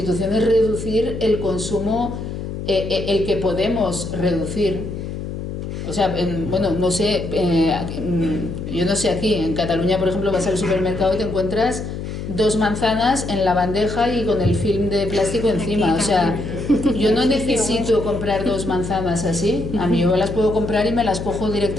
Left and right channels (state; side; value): noise; left; hum, 7 dB below the sound